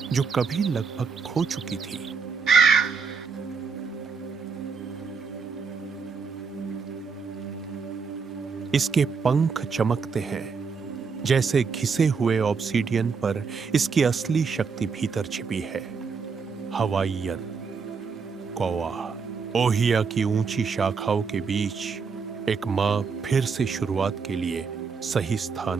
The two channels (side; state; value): left; quieter; 5.4 dB